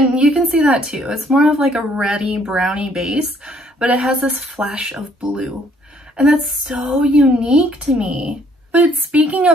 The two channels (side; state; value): both; normal; correlation 0.64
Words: you can see that too. It's more of like a reddy brownie base, but it has this flash of blue. And that's so unique to me. But speaking